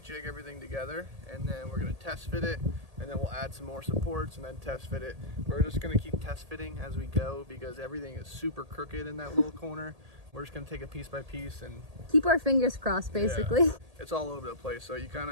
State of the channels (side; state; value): left; late; 1.8 ms